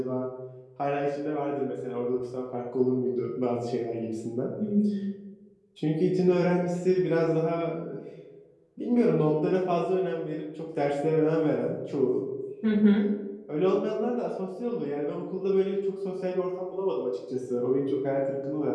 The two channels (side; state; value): both; identical; correlation 1.00